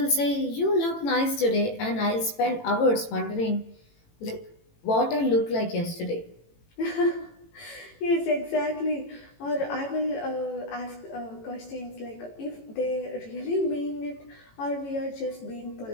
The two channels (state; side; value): late; right; 18 ms